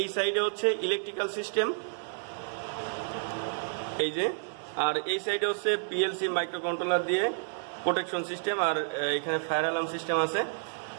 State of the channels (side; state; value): left; silent; 58 dB below the other